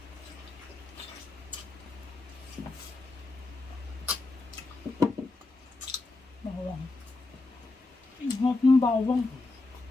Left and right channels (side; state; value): right; quieter; 3.3 dB